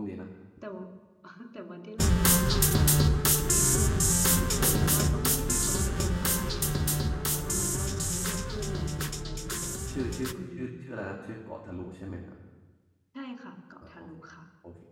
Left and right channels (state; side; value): identical; both; correlation 1.00